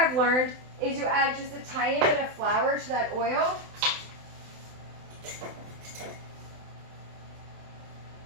learned is you add just a tiny bit of flour to that oil.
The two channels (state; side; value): late; left; 27 ms